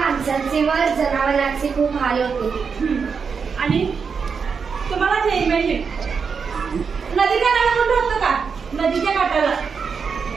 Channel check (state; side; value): quieter; left; 5.8 dB